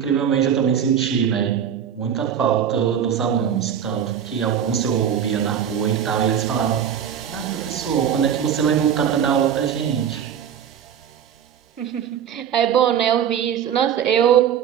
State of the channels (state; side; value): quieter; left; 8.7 dB